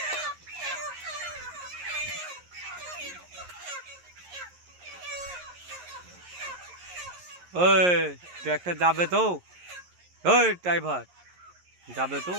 ওই ট্র্যাক্টর যাবে তো? ওই ড্রাইভার যাবে তো?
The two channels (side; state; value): left; late; 11 ms